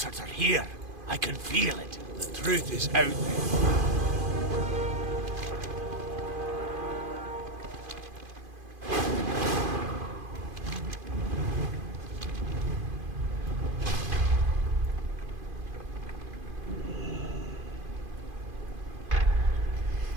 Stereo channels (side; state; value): left; late; 2.5 ms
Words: are here. I can feel it. The truth is out there.